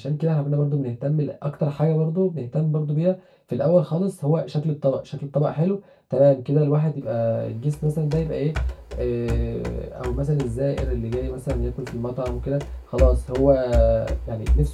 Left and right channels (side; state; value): both; identical; correlation 1.00